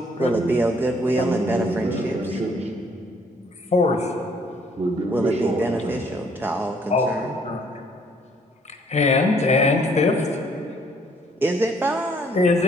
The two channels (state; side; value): normal; both; correlation 0.64